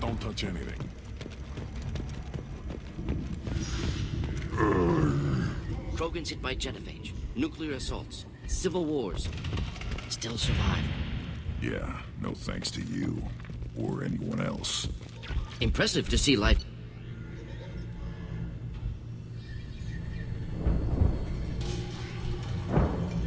touch anything. Krogan's hit by genophage, nuclear assaults, civil wars. Still survive. Yeah, no thanks to you. Or anyone else. Impressive to see life.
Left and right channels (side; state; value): both; identical; correlation 1.00